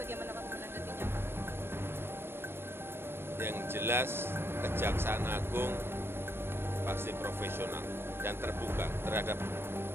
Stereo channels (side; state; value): left; late; 0.11 ms